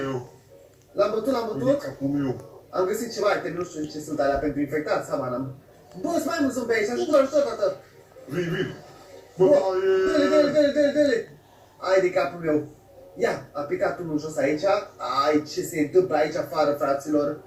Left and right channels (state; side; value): identical; both; correlation 1.00